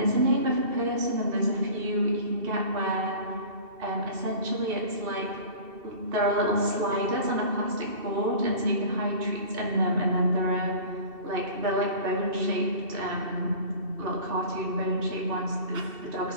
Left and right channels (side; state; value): left; late; 2.7 ms